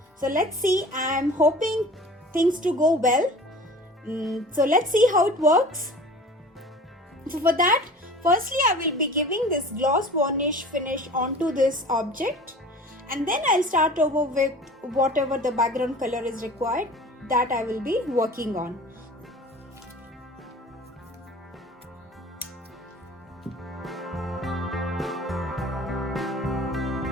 So let's see. I'm hoping things to go well. So let's see how it works. So for that, firstly I will be giving this gloss varnish finish onto this object, and then I'll start over with whatever the background color is required that I will be working on.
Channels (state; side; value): normal; both; correlation 0.42